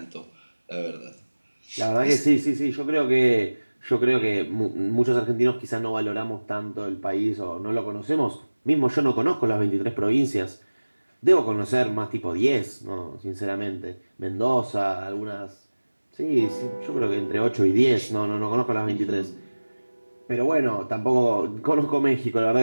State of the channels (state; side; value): inverted; both; correlation -1.00